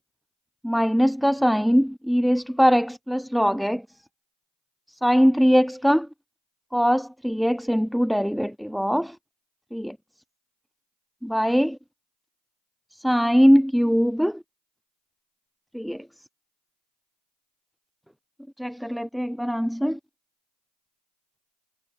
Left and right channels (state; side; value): identical; both; correlation 1.00